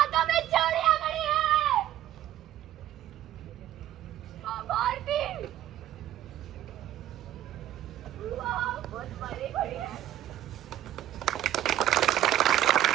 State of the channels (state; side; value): quieter; left; 12.6 dB